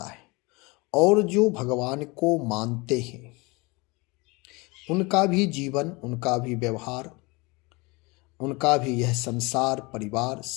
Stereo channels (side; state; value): right; quieter; 26.0 dB